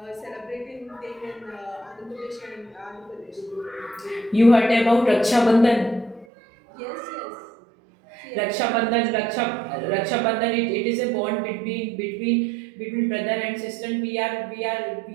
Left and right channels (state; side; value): drops out; left; at 6.2 s